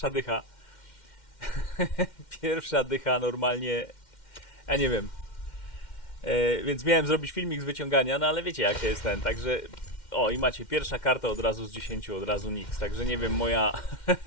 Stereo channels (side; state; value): right; late; 2.1 ms